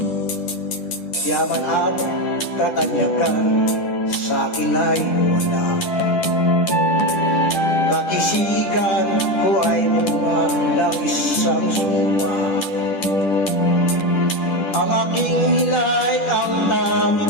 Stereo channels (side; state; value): right; late; 10 ms